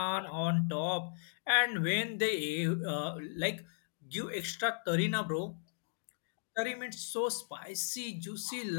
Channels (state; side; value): silent; right; digital silence